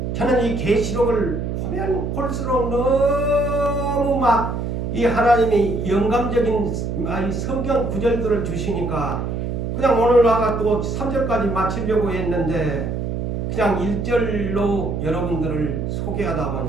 저는 이 계시록을 보면 볼수록 너무 막 이 하나님이 영감적인 이 성경 구절들을 주시니까 그냥 오늘 와가 또 3절까지 마치려고 했는데 그냥 1절로 여러분들을 소개하다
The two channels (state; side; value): noise; right; hum, 3 dB below the sound